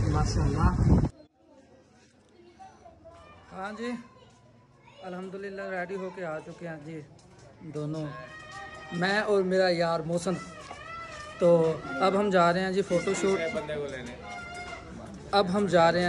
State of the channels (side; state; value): both; identical; correlation 1.00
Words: माशाल्लाह। हाँ जी अल्हम्दुलिल्लाह रेडी होके आ चुके हैं जी दोनों, मैं और मेरा यार मौसम। तो अब हम जा रहे हैं जी फ़ोटोशूट। बंदे को लेने अब हम जा रहे